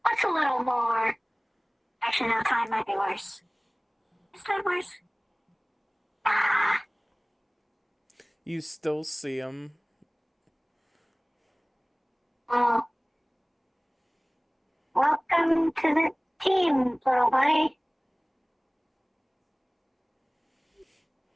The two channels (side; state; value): both; identical; correlation 1.00